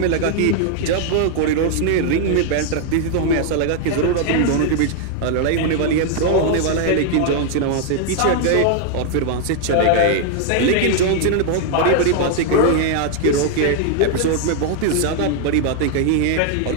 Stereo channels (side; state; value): both; different; correlation 0.00